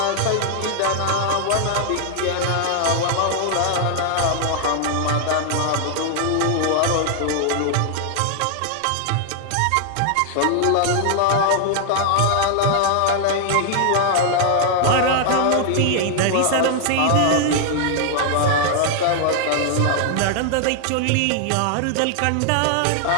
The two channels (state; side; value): different; both; correlation 0.00